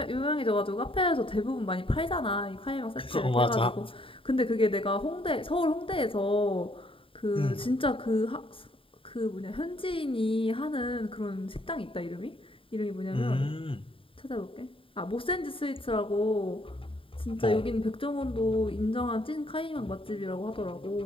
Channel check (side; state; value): right; late; 0.26 ms